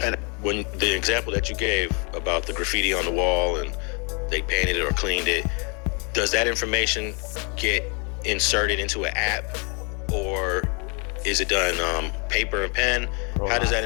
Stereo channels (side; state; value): right; quieter; 35.0 dB